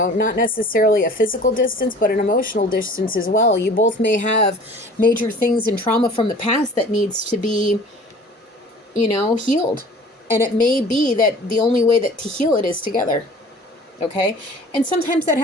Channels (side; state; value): both; normal; correlation 0.46